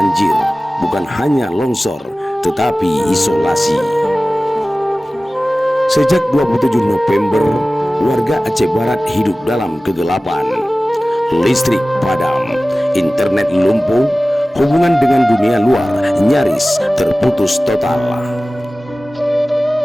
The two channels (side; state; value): both; normal; correlation 0.97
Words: bukan hanya longsor, tetapi isolasi. Sejak 27 November, warga Aceh Barat hidup dalam kegelapan. Listrik padam, internet lumpuh, hubungan dengan dunia luar nyaris terputus total.